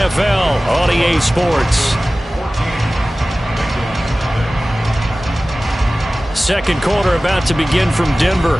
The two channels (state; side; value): normal; both; correlation 0.97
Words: on EA Sports. Second quarter about to begin from Denver.